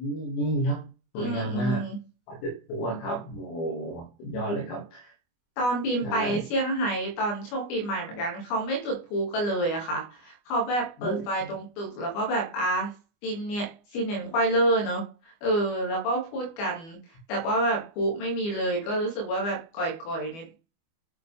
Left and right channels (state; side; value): late; right; 24 ms